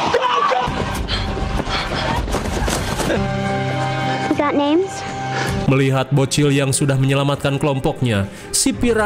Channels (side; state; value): both; identical; correlation 1.00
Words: Melihat bocil yang sudah menyelamatkan kelompoknya, si